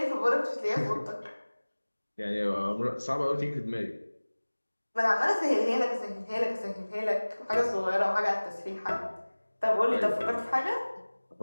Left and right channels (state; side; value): inverted; both; correlation -1.00